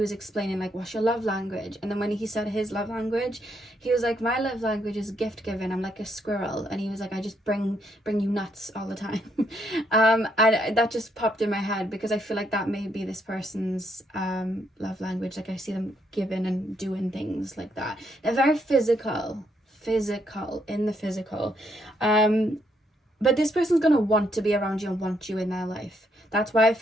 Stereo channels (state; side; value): normal; both; correlation 0.74